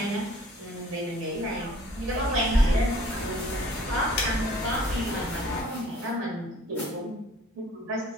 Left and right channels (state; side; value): normal; both; correlation 0.53